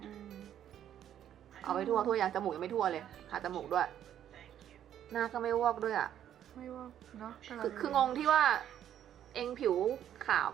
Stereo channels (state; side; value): quieter; left; 10.5 dB